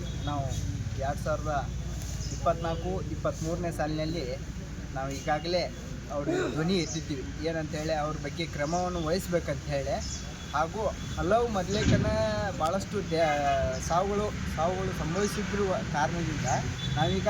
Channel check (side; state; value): both; identical; correlation 1.00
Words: ನಾವು 2024-23ನೇ ಸಾಲಿನಲ್ಲಿ ನಾವು ಈಗಾಗಲೇ ಅವ್ರಿಗೆ ಧ್ವನಿ ಎತ್ತಿದ್ದೀವಿ. ಏನಂತೇಳಿ ಅವ್ರ ಬಗ್ಗೆ ಕ್ರಮವನ್ನು ವಹಿಸ್ಬೇಕಂತ ಹೇಳಿ, ಹಾಗೂ ಹಲವು ಮೊದಲೇಕನ ಭಾಳಷ್ಟು ಸಾವುಗಳು ಸಂಭವಿಸಿದ್ರು ಕಾರಣದಿಂದ